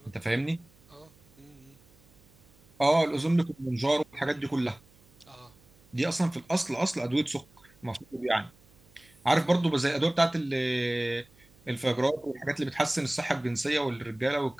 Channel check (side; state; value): right; noise; hum, 29 dB below the sound